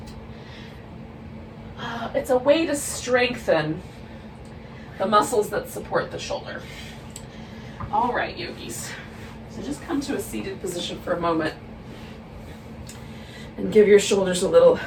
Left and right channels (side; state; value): both; identical; correlation 1.00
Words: it's a way to strengthen the muscles that support the shoulder. All right, yogis. So just come to a seated position for a moment and give your shoulders a little